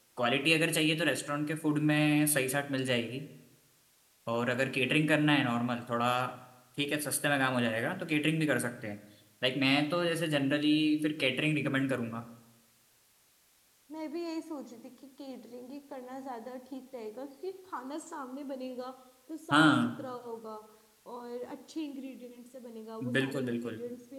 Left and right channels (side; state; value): both; identical; correlation 1.00